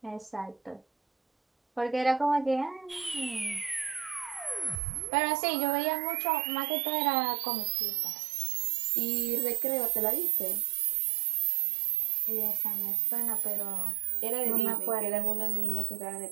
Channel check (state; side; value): drops out; left; at 4.8 s